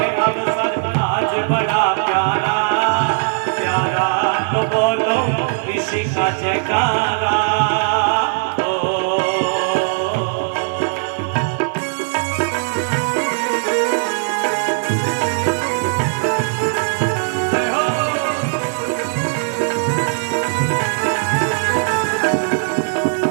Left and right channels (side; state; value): left; silent; 65 dB below the other